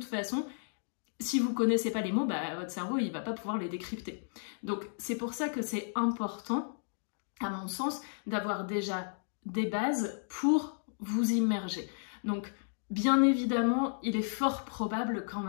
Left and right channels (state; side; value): silent; right; digital silence